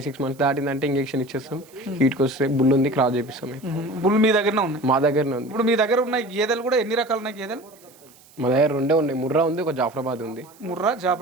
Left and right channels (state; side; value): noise; right; hiss, 27 dB below the sound